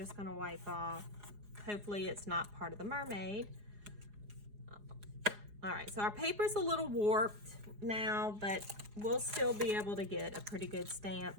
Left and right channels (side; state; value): left; late; 4.8 ms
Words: going to wipe off. Hopefully it's not part of the mermaid. All right, so our paper's a little warped now, but we'll still be able to get a pretty good